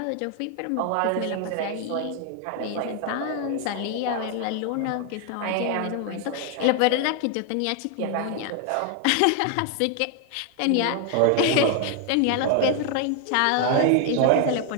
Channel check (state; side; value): different; both; correlation 0.01